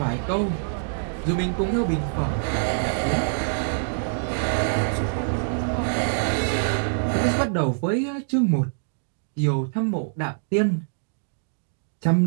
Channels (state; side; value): silent; left; digital silence